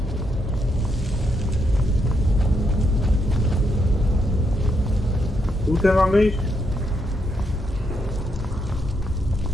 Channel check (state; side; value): normal; both; correlation 0.78